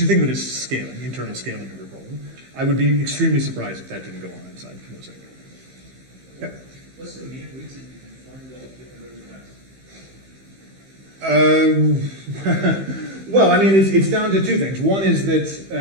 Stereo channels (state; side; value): late; left; 15 ms